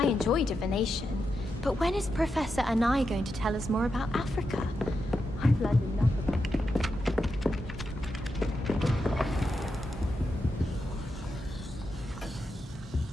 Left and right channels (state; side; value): normal; both; correlation 0.86